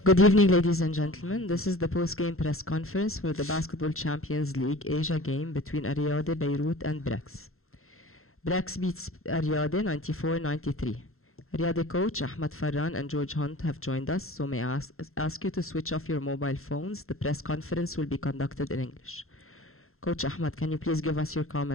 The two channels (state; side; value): late; right; 0.62 ms